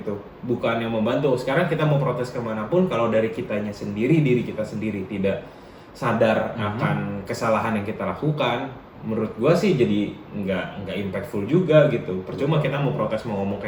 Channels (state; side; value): identical; both; correlation 1.00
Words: bukan yang membantu. Sekarang kita mau protes kemanapun kalau dari kitanya sendiri, diri kita sendiri tidak sadar akan kesalahan yang kita lakukan, menurut gua sih jadi nggak impactful juga gitu. Percuma kita mau protes mau ngomong